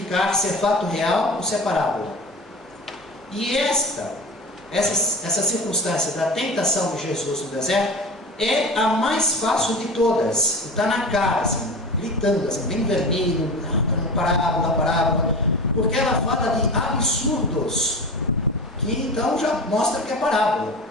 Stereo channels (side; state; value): both; normal; correlation 0.31